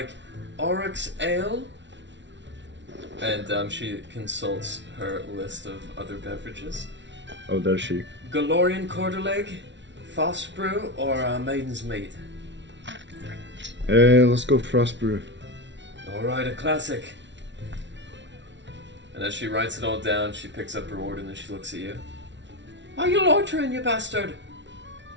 Oryx Ale? And she consults her list of other beverages. Oh, does she? Galorian Quarterleg, Foss Brew, or Maiden's Meat? Let's go frost brew. Alright, a classic. And as she writes it all down, she picks up her order and then she looks at you. Are you loitering, you bastard?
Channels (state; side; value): late; left; 0.52 ms